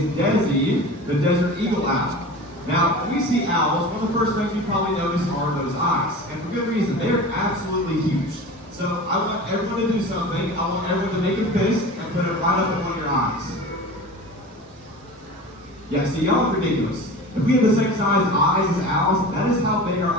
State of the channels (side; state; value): both; normal; correlation 0.35